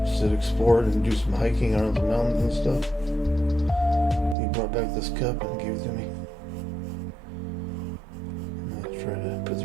just to explore it and do some hiking around the mountains and stuff. He brought back this cup and gave it to me. I'm gonna try to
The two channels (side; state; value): left; drops out; at 4.4 s